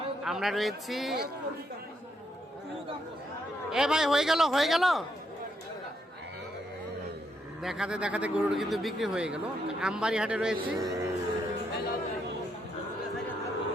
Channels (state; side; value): normal; both; correlation 0.77